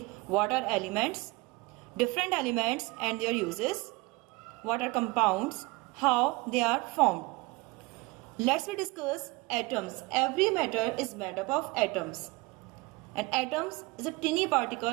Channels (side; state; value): left; quieter; 23.8 dB